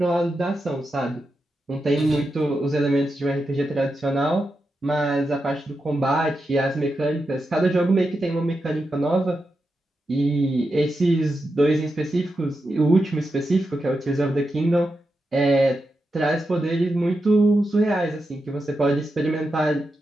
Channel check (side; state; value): both; normal; correlation 0.88